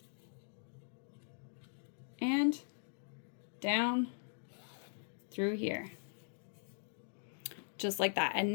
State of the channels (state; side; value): silent; right; digital silence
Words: and down through here. Just like that. And